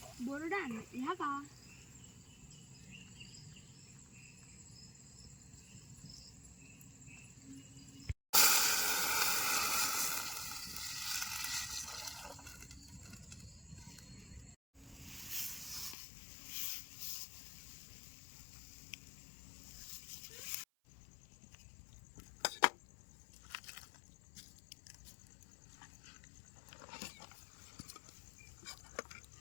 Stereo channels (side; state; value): right; drops out; at 16.0 s